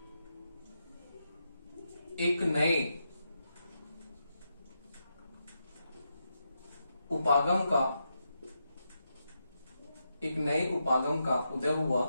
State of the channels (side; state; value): both; inverted; correlation -0.84